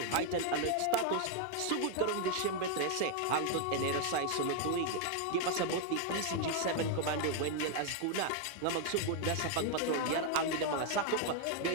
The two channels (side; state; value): both; different; correlation 0.00